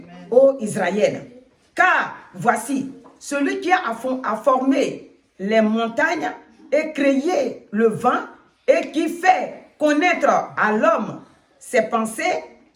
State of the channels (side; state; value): both; identical; correlation 1.00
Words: ô Israël. Car voici, celui qui a formé les montagnes et créé le vent et qui fait connaître à l'homme ses pensées,